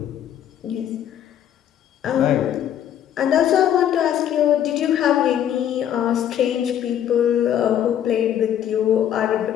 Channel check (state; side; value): quieter; right; 10.3 dB